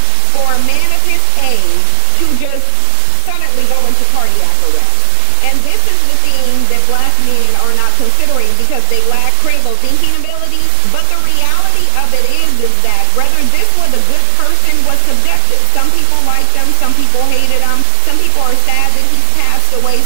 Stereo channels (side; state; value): both; different; correlation 0.00